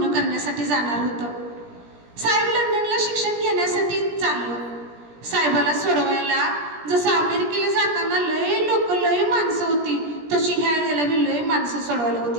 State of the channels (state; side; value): late; left; 17 ms